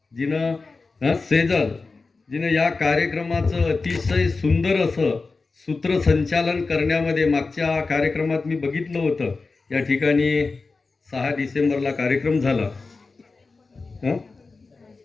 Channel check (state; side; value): quieter; right; 4.0 dB